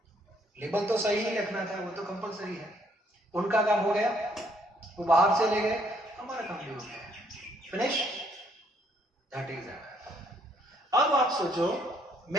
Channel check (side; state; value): both; normal; correlation 0.68